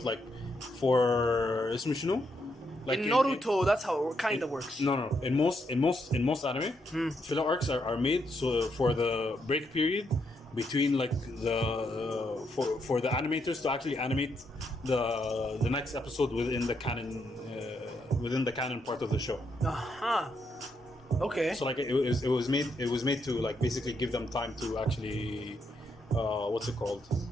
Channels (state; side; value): normal; both; correlation 0.78